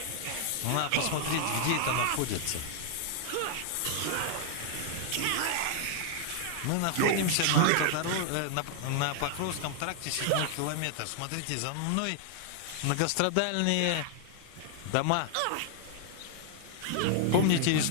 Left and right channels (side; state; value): both; different; correlation 0.00